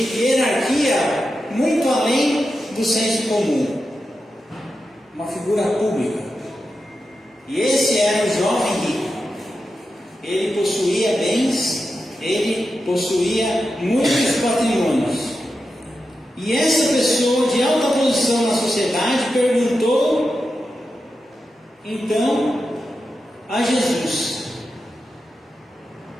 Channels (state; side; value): normal; both; correlation 0.90